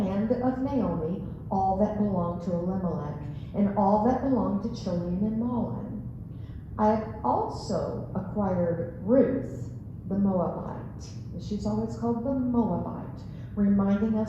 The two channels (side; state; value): both; identical; correlation 1.00